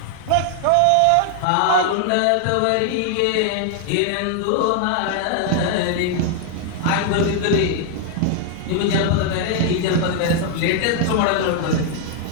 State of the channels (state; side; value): different; both; correlation 0.00